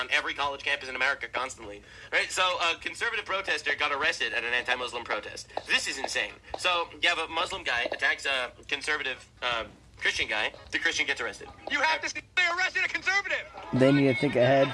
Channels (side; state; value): both; identical; correlation 1.00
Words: every college campus in America constantly. Right, so a conservative protester got arrested at an anti-Muslim protest. This is insane. So you have a Muslim guy attacks a conservative Christian guy. The Christian gets arrested. You have to stay arrested a conservative. They need to think